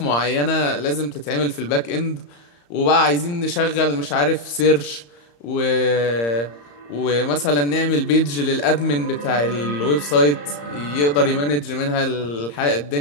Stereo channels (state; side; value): late; right; 34 ms